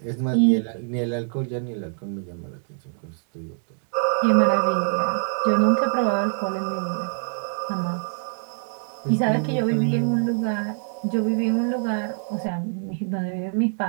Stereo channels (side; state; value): left; silent; 57 dB below the other